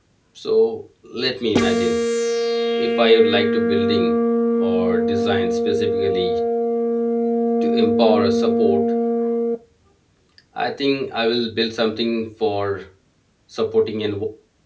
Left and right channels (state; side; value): identical; both; correlation 1.00